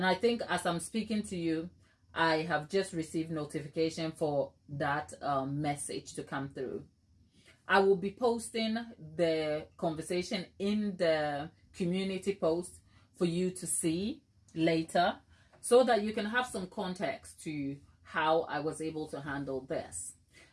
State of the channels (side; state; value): both; identical; correlation 1.00